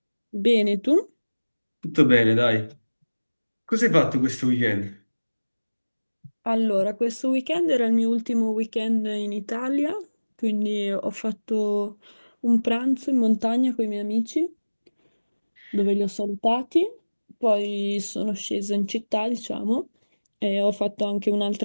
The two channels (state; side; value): inverted; both; correlation -1.00